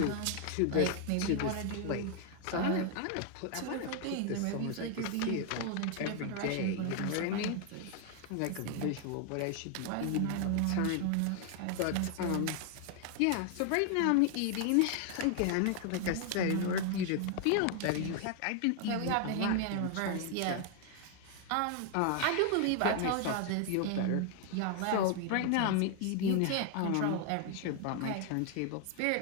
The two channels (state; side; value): different; both; correlation 0.00